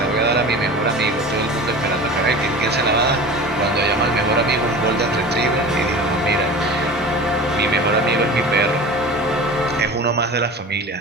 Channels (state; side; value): normal; both; correlation 0.36